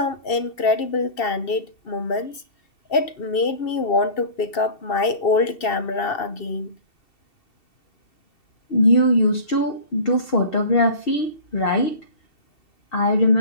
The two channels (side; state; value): right; late; 2.7 ms